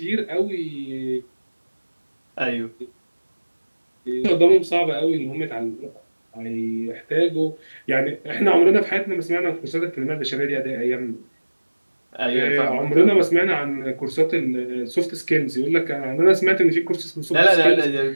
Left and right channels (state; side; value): inverted; both; correlation -1.00